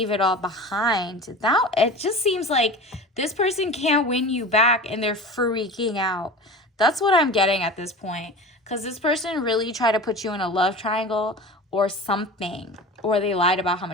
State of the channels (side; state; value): both; normal; correlation 0.33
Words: it all behind. Now, it just seems like this person can't win you back and they're freaking out. That's what I'm getting at this point. Because this person really tried to put you in a love triangle or something. Or they lied about how